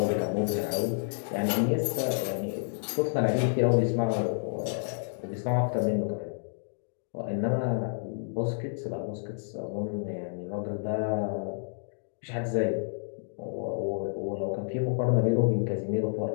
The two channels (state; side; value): silent; right; digital silence